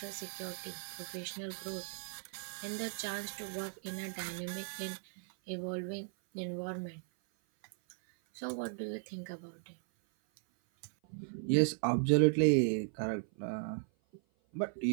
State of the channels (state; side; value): silent; left; 53 dB below the other